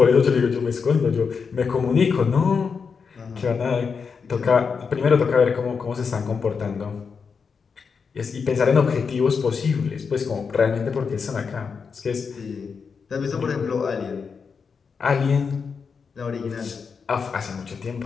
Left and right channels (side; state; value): right; quieter; 5.7 dB